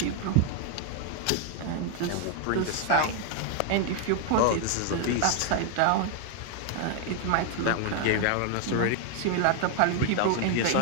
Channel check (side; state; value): both; different; correlation 0.00